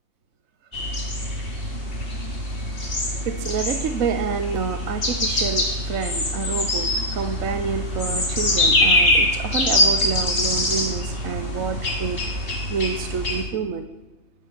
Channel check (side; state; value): left; late; 3.2 ms